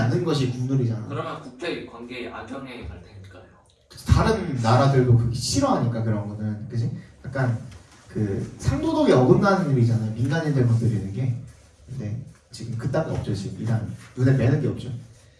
것이 국룰이잖아. 그러면 국제 관계에 악영향이 갈 테니까요. 다른 나라들도 그게 싫어하니까 그런 거는 그지? 약간 그 상도덕에 어긋나는 일이잖아요. 민간인들 건드리는 게. 근데 지금 그딴 거 없죠. 지금 이란 눈에 뵈는 게 없죠.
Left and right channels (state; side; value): identical; both; correlation 1.00